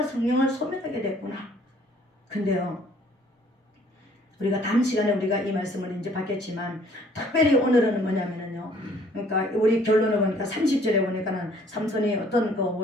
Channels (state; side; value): normal; both; correlation 0.59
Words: 성령을 소멸하게 됐구나. 근데요, 우리가 다음 시간에 우리가 이 말씀을 이제 받겠지만 특별히 오늘은 뭐냐면은요, 그러니까 우리 결론을 보니까 30절에 보니까는 삼손이 어떤